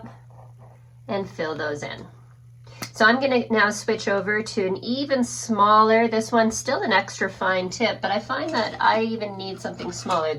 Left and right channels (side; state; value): both; identical; correlation 1.00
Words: and fill those in. So I'm going to now switch over to an even smaller, this one's still an extra fine tip, but I find that I even need something smaller.